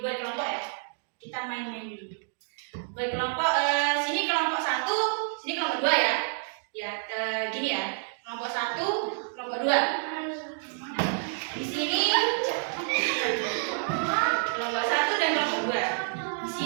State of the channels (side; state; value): left; silent; 59 dB below the other